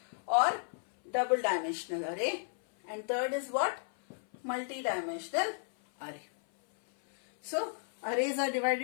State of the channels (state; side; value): silent; right; 56 dB below the other